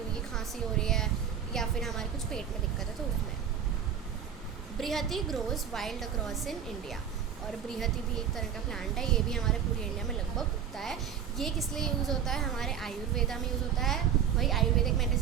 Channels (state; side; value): quieter; left; 8.3 dB